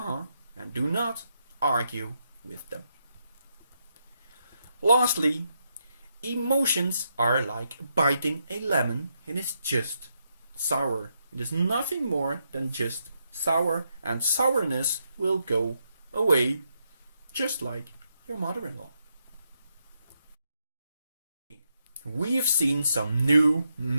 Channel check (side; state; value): both; inverted; correlation -0.81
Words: do not argue with them. Lastly, emotions are like biting a lemon. It is just sour. It is nothing more than just sour, and sourness will go away just like your mother-in-law. We've seen some new